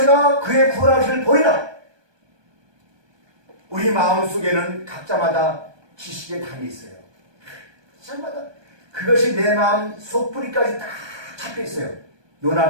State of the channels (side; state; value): left; late; 1.2 ms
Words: 그의 구원하심을 보리라. 우리 마음속에는 각자마다 지식의 담이 있어요. 각자마다 그것이 내 마음 속뿌리까지 다 잡혀있어요.